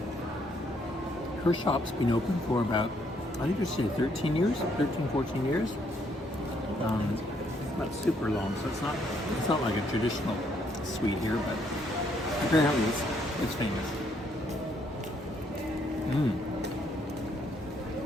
her shop's been open for about, I think they said 13 years, 14 years. Not super long, so it's not like a traditional sweet here, but apparently it's famous.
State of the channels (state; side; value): normal; both; correlation 0.70